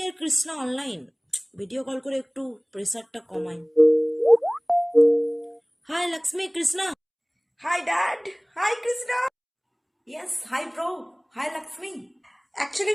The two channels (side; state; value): both; identical; correlation 1.00